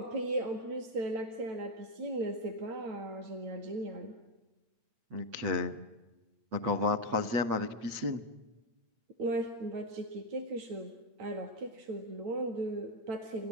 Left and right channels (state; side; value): late; left; 8.8 ms